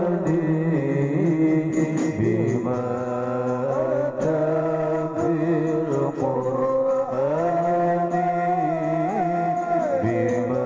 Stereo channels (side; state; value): both; identical; correlation 1.00